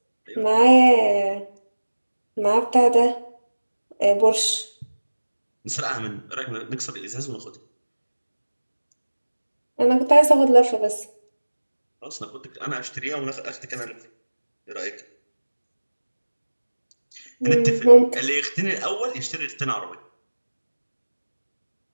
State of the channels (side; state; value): both; inverted; correlation -1.00